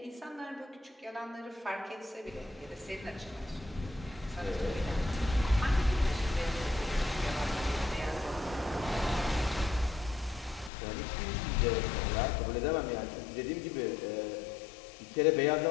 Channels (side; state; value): right; drops out; at 10.7 s